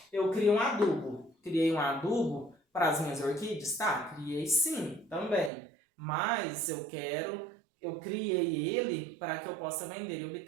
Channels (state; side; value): drops out; left; at 5.5 s